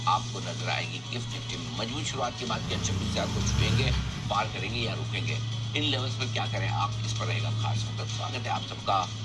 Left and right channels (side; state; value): both; identical; correlation 1.00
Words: आपको नजर आएगी। गिफ्ट निफ्टी में मजबूत शुरुआत के बाद क्या 26,000 को छुएंगे, पार करेंगे या रुकेंगे, इन लेवल्स पर क्या करें आप, इस पर रहेगा खास फोकस। स्वागत है आप सबका